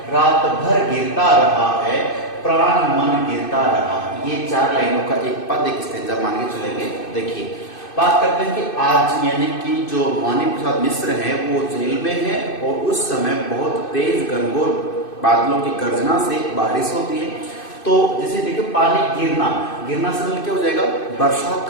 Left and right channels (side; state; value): right; late; 2.6 ms